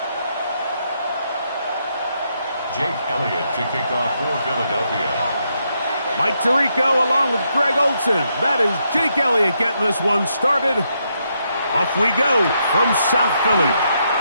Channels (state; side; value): inverted; both; correlation -0.78